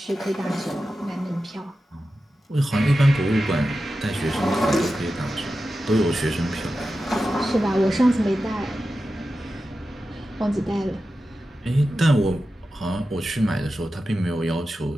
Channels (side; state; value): both; normal; correlation 0.92